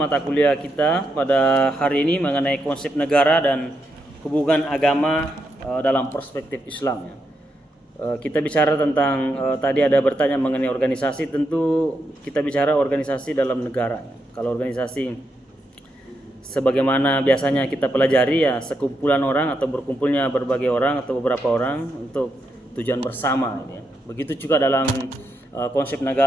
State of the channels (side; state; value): both; normal; correlation 0.82